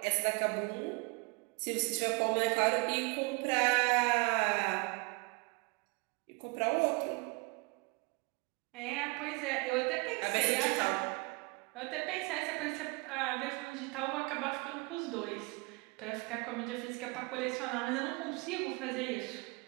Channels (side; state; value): left; quieter; 29.1 dB